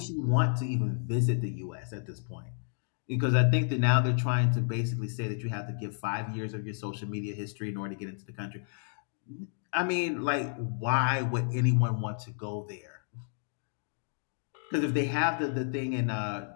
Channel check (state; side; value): silent; right; digital silence